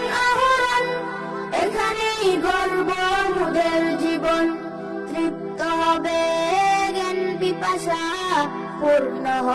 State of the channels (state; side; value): identical; both; correlation 1.00